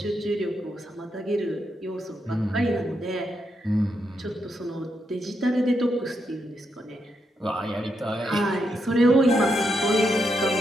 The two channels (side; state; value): both; normal; correlation 0.81